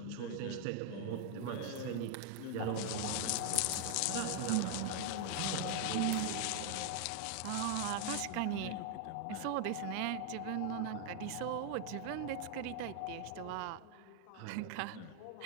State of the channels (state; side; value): different; both; correlation 0.00